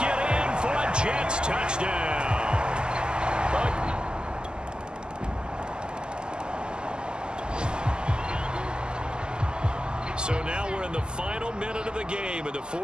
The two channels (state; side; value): late; left; 0.047 ms